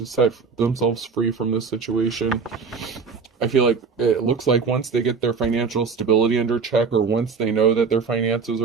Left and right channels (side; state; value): left; quieter; 5.2 dB